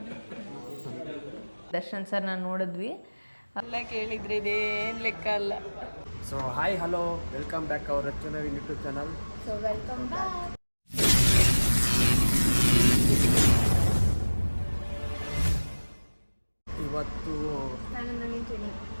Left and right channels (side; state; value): both; inverted; correlation -1.00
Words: ದರ್ಶನ್ ಸರ್ ನಾನು ನೋಡಿದ್ವಿ ಎಲ್ಲ ಕೇಳಿದ್ರೆ ಇದೇನು ಲೆಕ್ಕ ಅಲ್ಲ. So hi hello welcome back hour ರಚನಾ YouTube channel. So welcome back. ಇವತ್ತು